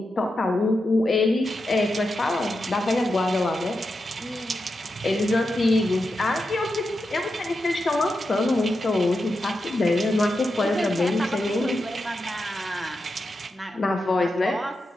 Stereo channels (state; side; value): normal; both; correlation 0.88